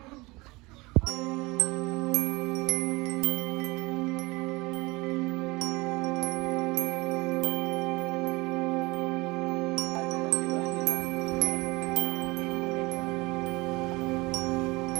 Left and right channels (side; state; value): left; quieter; 23.4 dB